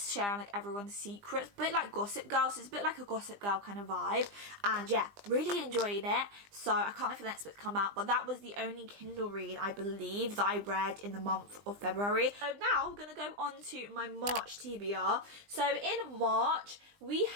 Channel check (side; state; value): left; late; 20 ms